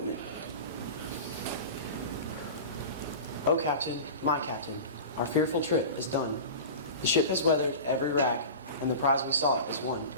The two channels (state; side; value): inverted; both; correlation -0.32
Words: O Captain, my Captain, our fearful trip is done. The ship has weathered every rack, and the prize we sought is won.